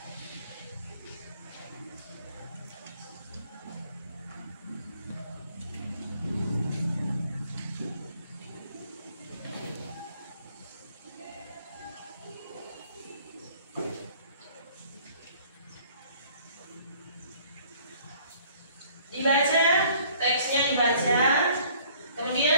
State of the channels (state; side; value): inverted; both; correlation -0.57